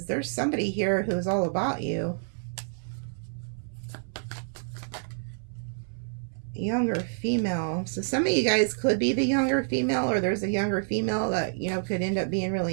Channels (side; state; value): left; silent; 59 dB below the other